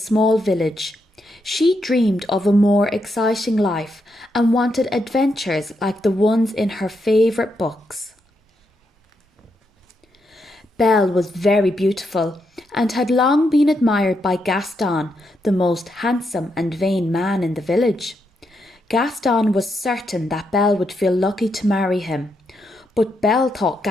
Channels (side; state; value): both; normal; correlation 0.81